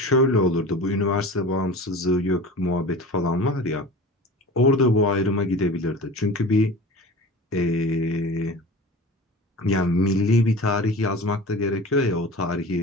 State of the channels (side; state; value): both; normal; correlation 0.36